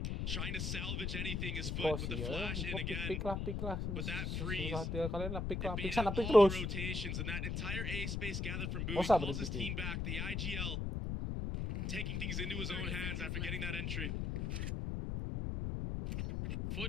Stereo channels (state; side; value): noise; left; rumble, 1 dB below the sound